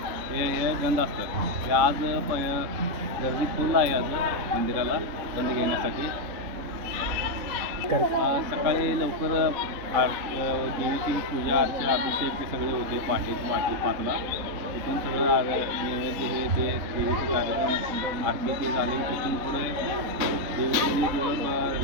हे गंध असतं. ते आज गर्दी फुल आहे आज मंदिराला गंध घेण्यासाठी. सकाळी लवकर देवीची पूजा अर्चा अभिषेक हे सगळे होते. पहाटे 5ला तिथून सगळं नैवेद्य हे ते देवीचे कार्यक्रम आरती ते झाले. तिथून पुढे देवीचे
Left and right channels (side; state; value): left; late; 3.8 ms